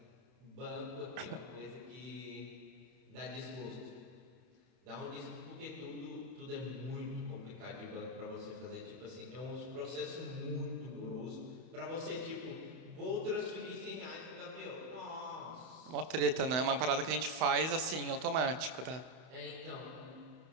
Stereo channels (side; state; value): left; late; 31 ms